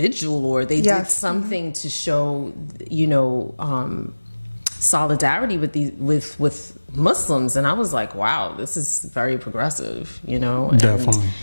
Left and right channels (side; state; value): both; inverted; correlation -1.00